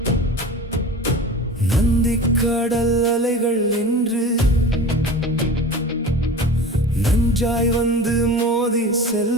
நந்திக்கடல் அலைகள் என்று நஞ்சாய் வந்து மோதி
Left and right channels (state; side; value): normal; both; correlation 0.35